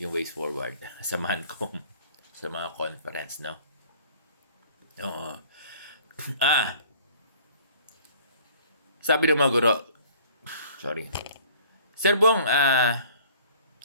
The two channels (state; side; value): inverted; both; correlation -0.52